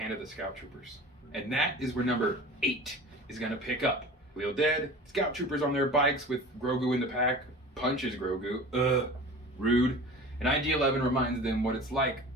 of the Scout Troopers. And that is where number 8 is going to pick up. Khalil dead, Scout Troopers on their bikes with Grogu in the pack, punches Grogu, rude, and IG-11 reminds them what it's like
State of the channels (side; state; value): both; normal; correlation 0.38